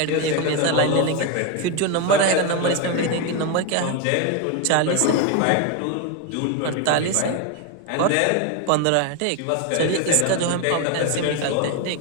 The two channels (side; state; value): both; different; correlation 0.02